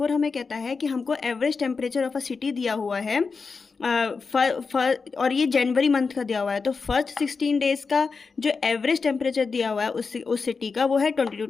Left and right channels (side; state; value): right; quieter; 4.8 dB